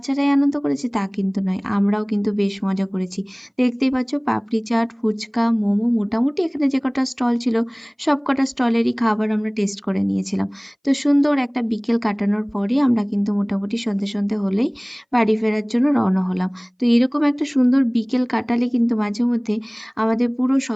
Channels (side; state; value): both; identical; correlation 1.00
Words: আনন্দ করেছে তা কিন্তু নয়, আমরাও কিন্তু বেশ মজা করেছি। দেখতেই পাচ্ছ পাপড়ি চাট, ফুচকা, মোমো, মোটামুটি এখানে যে কটা স্টল ছিল সব কটা স্টলেরই খাবার আমরা টেস্ট করে নিয়েছিলাম। তো সুন্দর একটা বিকেল কাটানোর পরে আমরা কিন্তু মোটামুটি সন্ধে সন্ধে হলেই বাড়ি ফেরার জন্য রওনা হলাম। তো এরকম একটা সুন্দর বিকেল কাটালে কিন্তু মাঝে মধ্যে আমাদের পুরো